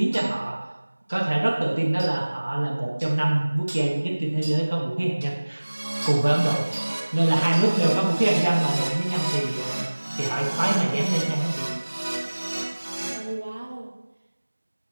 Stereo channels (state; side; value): inverted; both; correlation -1.00